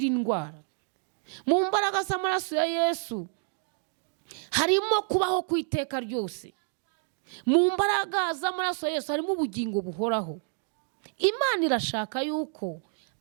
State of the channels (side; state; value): left; silent; 59 dB below the other